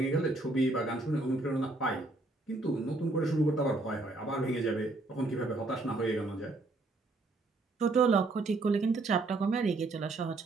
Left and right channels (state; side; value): quieter; left; 3.1 dB